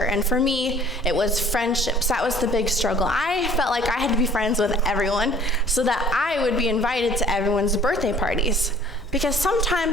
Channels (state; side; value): noise; left; hum, 25 dB below the sound